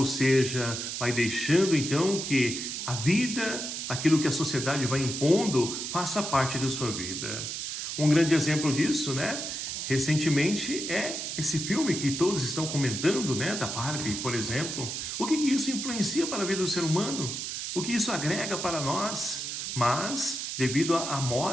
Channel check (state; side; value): noise; right; hiss, 4 dB below the sound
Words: seja, vai deixando então que a vida, aquilo que a sociedade vai impondo, faça parte de sua vida. Um grande exemplo disso, né? Recentemente é esse filme que todos estão comentando, né? Da Barbie, por exemplo. O que isso influencia para a vida do ser humano? O que isso agrega para nós? Mas, devido à